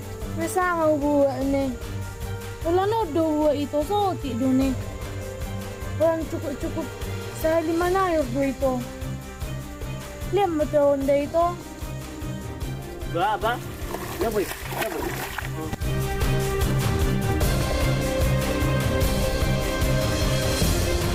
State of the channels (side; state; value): both; identical; correlation 1.00